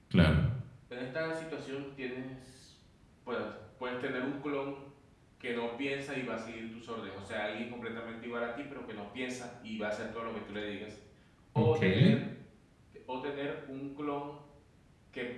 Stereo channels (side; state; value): both; identical; correlation 1.00